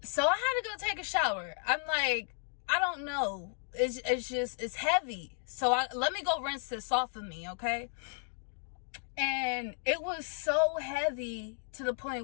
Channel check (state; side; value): silent; right; 55 dB below the other